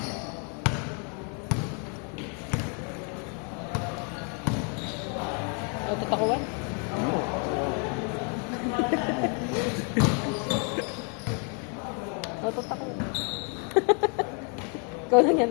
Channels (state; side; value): quieter; right; 39.0 dB